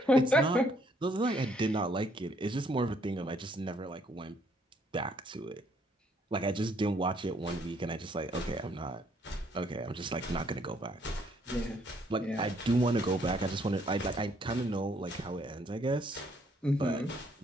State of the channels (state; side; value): normal; both; correlation 0.67